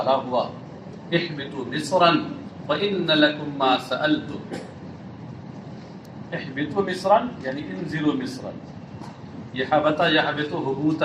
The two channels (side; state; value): both; identical; correlation 1.00